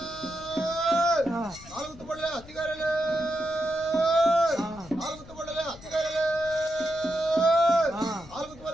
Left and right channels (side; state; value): left; noise; rumble, 19 dB below the sound